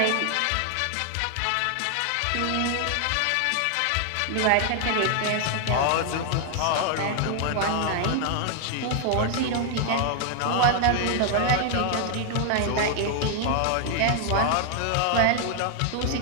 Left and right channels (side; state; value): both; different; correlation 0.00